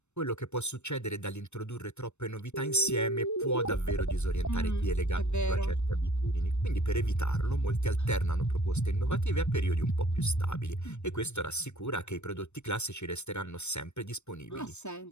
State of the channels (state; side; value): late; right; 0.82 ms